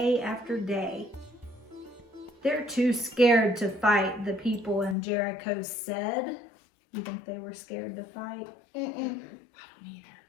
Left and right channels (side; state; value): right; drops out; at 5.0 s